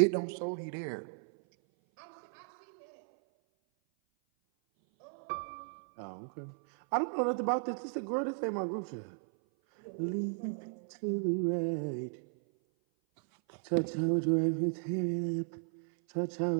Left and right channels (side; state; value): left; silent; 55 dB below the other